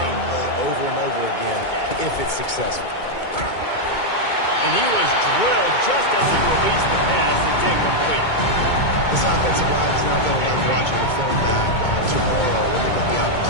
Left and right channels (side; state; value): right; late; 2.2 ms